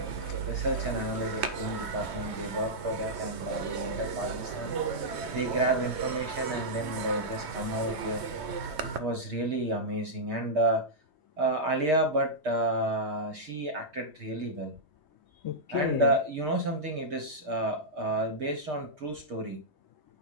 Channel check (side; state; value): left; late; 3.2 ms